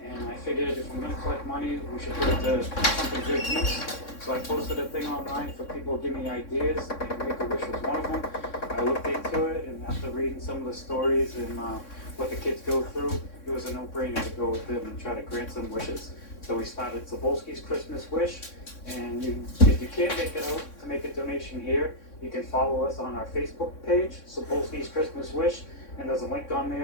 and I figured if I'm gonna collect money, we should put it to something good use. So I posted a thing online for people to give me ideas, and Make-A-Wish was one of them. I looked into it, and after reading some of the stories and what the kids go through, it was a no-brainer to go with them and try to grant some wishes. So we started Cebulski's Christmas Wish, and if you can't make it out to make a donation here, you can follow us on our Facebook page, Cebulski's Christmas Wish, and there's a link on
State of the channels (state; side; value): late; right; 3.6 ms